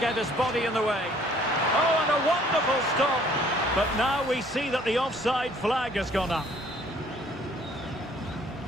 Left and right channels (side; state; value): both; normal; correlation 0.59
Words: his body in the way. Oh, and a wonderful stop. But now we see that the offside flag has gone up.